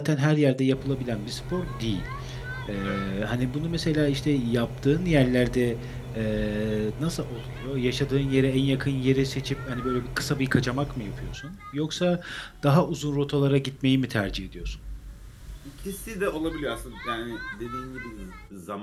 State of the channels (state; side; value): identical; both; correlation 1.00